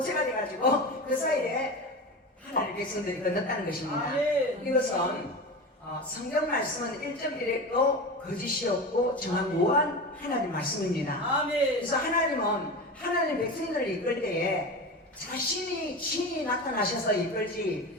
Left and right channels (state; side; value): normal; both; correlation 0.26